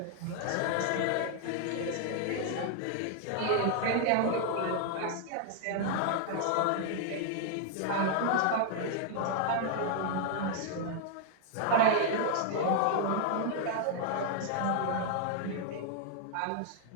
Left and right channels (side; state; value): both; different; correlation 0.00